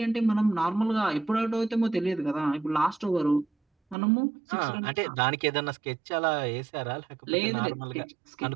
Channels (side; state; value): left; drops out; at 4.0 s